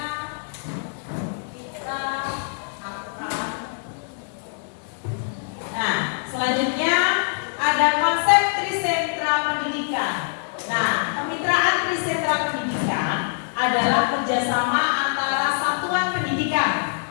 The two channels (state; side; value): silent; right; digital silence